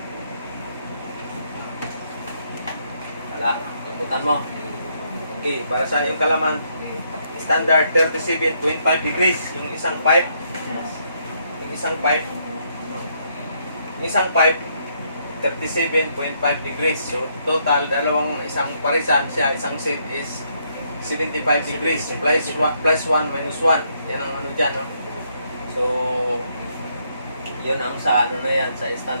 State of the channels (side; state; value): both; inverted; correlation -0.73